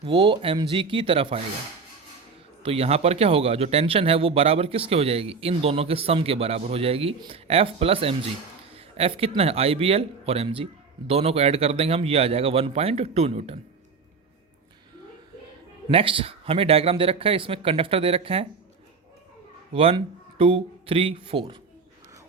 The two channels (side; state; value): left; quieter; 4.9 dB